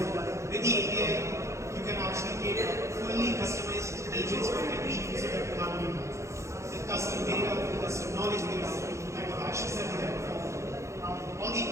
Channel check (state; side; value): late; left; 0.14 ms